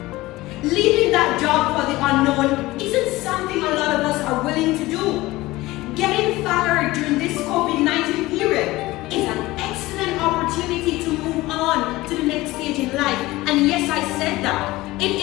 Leaving that job for the unknown isn't something a lot of us are willing to do. Getting fired during this COVID-19 period is an excellent opportunity to move on to the next stage in life. And yes, I said that. It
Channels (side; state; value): right; quieter; 19.0 dB